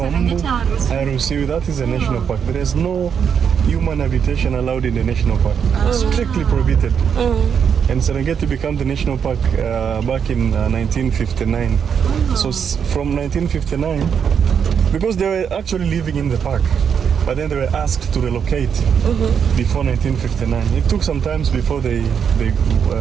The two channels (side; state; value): left; quieter; 7.3 dB